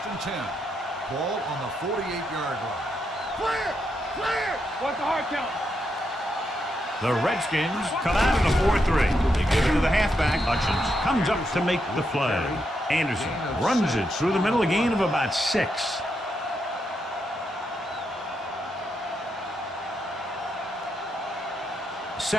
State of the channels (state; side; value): normal; both; correlation 0.82